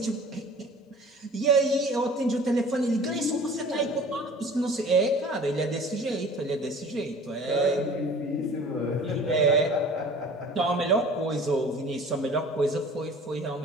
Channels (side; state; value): both; normal; correlation 0.45